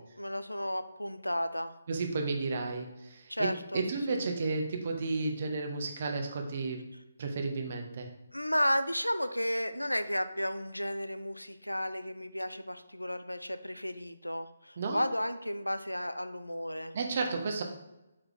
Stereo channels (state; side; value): inverted; both; correlation -0.89